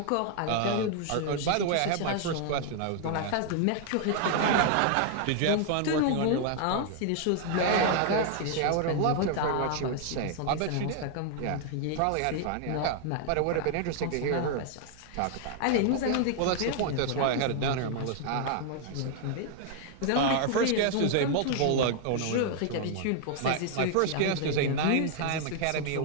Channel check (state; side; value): different; both; correlation 0.00